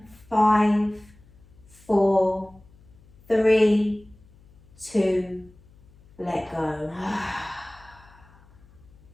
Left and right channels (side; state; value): left; noise; hum, 27 dB below the sound